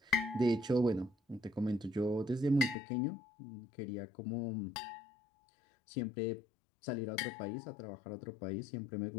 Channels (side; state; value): right; drops out; at 2.8 s